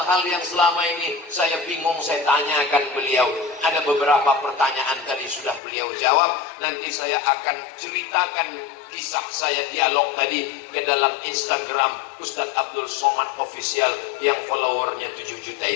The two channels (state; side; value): drops out; right; at 5.6 s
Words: yang selama ini saya bingung saya tanyakan beliau. Ada beberapa pertanyaan tadi sudah beliau jawab. Nanti saya akan ceritakan kisah saya dialog tadi ke dalam Instagram Ustadz Abdul Somad Official yang followernya 7 juta